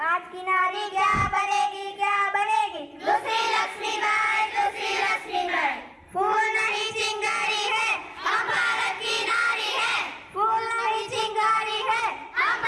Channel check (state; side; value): identical; both; correlation 1.00